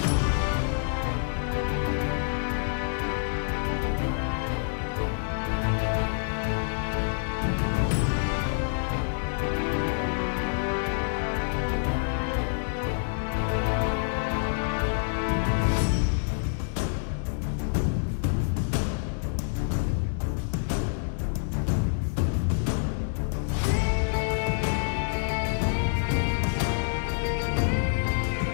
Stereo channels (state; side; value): silent; right; digital silence